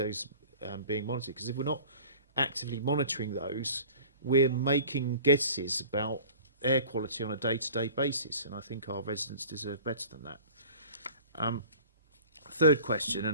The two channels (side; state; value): both; inverted; correlation -0.44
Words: being monitored? Because if we're not actively monitoring those, we're making guesses about air quality on a day-to-day basis, and I think our residents deserve better than that. Third question,